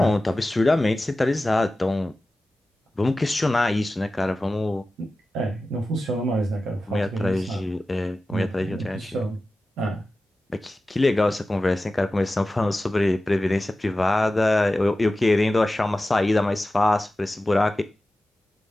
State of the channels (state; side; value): normal; both; correlation 0.95